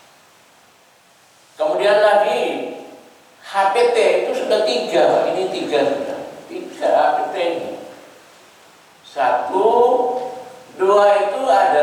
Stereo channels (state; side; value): identical; both; correlation 1.00